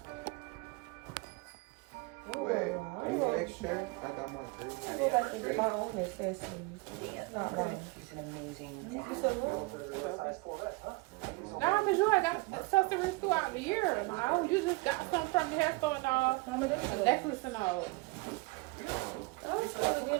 Oh, Wait, I are you go- next shirt? I got my I green. go back to my own accessories. It's not mine. He's an amazing You said what? Nah, cause you had got accessories throughout the year. Like, oh, you just got some from the hair store and all, Mama, this a is necklace and all. I was started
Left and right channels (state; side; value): quieter; left; 24.8 dB